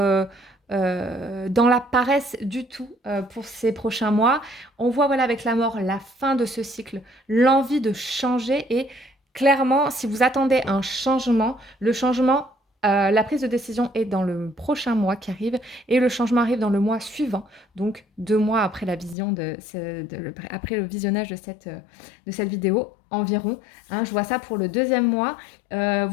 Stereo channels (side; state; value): right; drops out; at 19.2 s